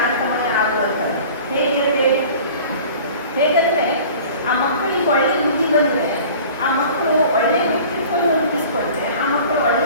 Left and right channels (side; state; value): both; inverted; correlation -0.44